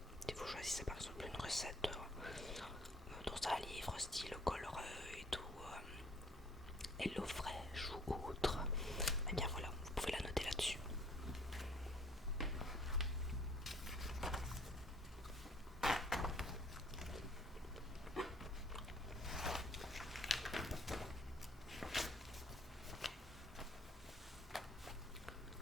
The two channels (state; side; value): normal; both; correlation 0.59